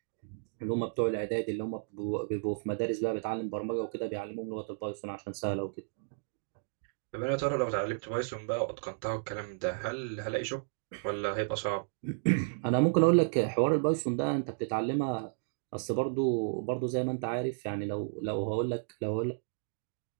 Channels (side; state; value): left; silent; digital silence